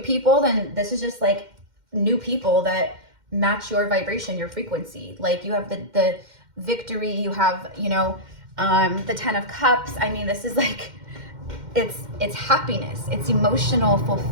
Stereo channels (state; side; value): late; left; 2.1 ms